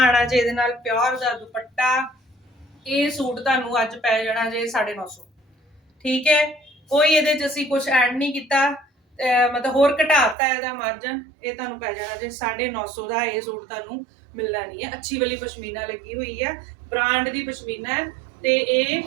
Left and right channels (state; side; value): drops out; left; at 10.4 s